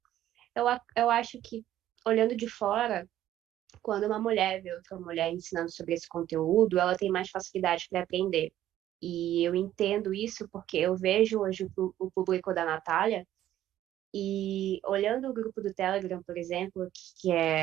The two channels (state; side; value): quieter; left; 12.7 dB